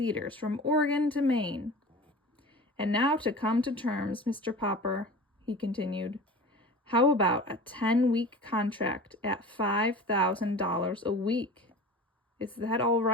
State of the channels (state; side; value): normal; both; correlation 0.37